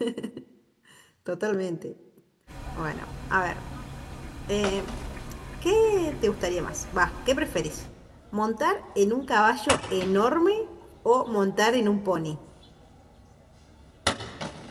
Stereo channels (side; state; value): both; identical; correlation 1.00